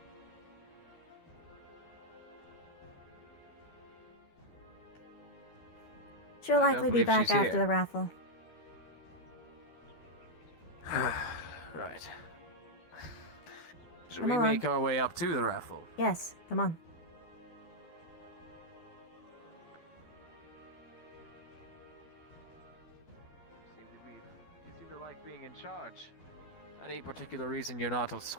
She'll I don't likely be believe back she's after here. the raffle. Right. Should Come we along. make our way up to the raffle? Yes, come on. You seem to like being in charge. Any particular reason you're not a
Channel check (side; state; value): right; late; 12 ms